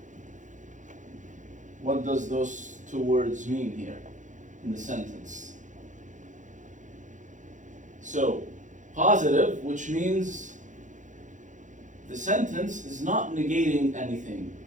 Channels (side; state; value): left; late; 0.36 ms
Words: What does those 2 words mean here in the sentence? So, positive, which means the sentence is not negating anything.